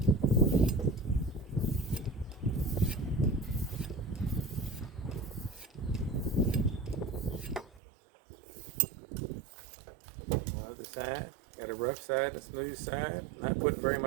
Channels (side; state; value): left; drops out; at 7.8 s